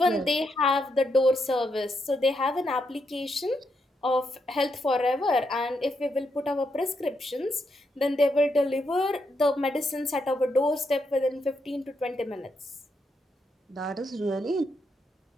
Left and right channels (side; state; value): both; normal; correlation 0.80